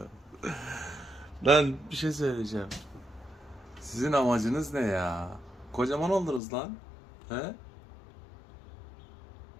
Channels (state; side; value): drops out; right; at 6.4 s